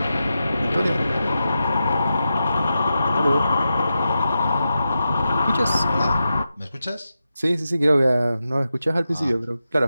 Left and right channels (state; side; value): inverted; both; correlation -0.90